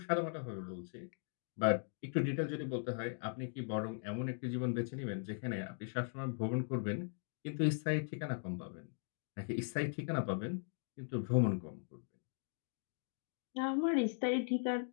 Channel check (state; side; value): silent; right; digital silence